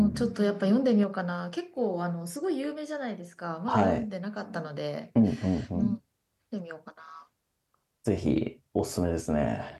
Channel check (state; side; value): identical; both; correlation 1.00